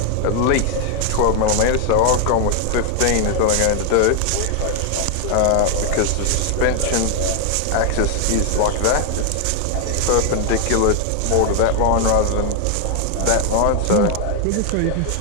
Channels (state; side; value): different; both; correlation 0.00